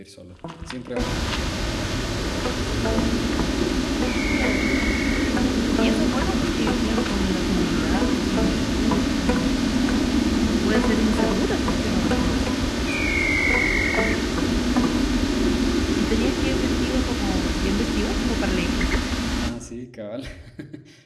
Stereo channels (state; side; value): identical; both; correlation 1.00